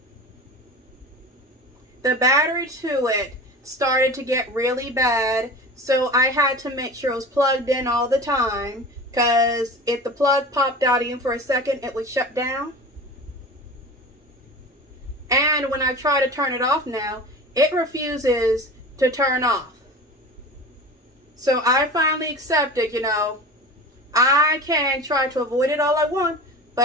The battery to it started to get really bad, so I had to make sure it was plugged in all the time, because if the plug popped out even for a second, it would shut down. And when I try to turn it off now, it refuses to turn off. So I finally accepted, you know, I can try to avoid it all I want,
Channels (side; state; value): both; normal; correlation 0.35